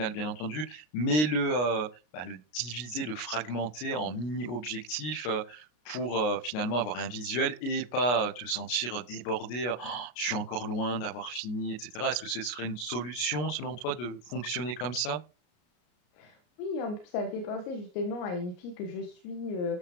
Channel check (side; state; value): right; late; 33 ms